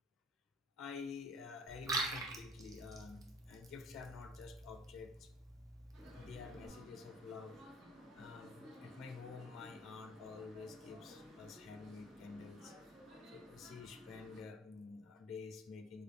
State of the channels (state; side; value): normal; both; correlation 0.48